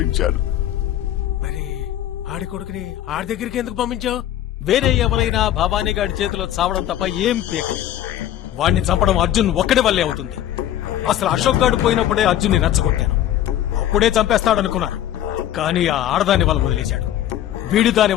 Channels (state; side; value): quieter; right; 12.1 dB